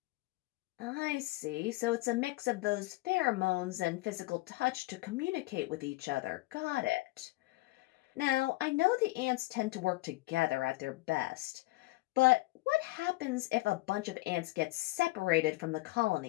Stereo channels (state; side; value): quieter; right; 21.0 dB